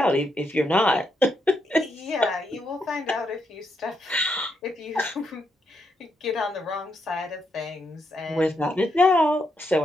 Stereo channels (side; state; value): both; normal; correlation 0.80